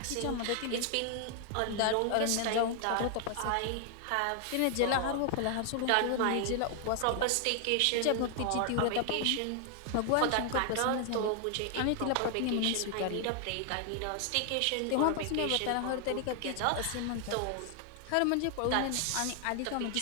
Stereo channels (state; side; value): different; both; correlation 0.00